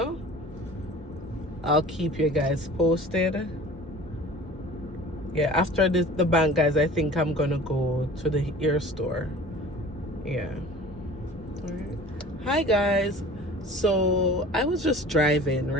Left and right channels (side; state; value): both; normal; correlation 0.43